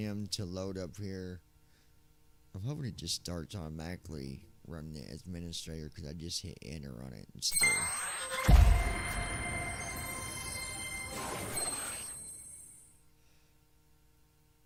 to load up here. I'm hoping it just starts automatically running the administrator because I just hit enter on it instead.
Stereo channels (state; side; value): identical; both; correlation 1.00